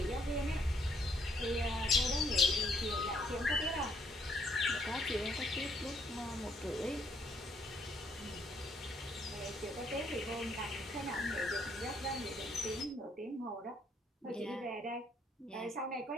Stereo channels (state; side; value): normal; both; correlation 0.70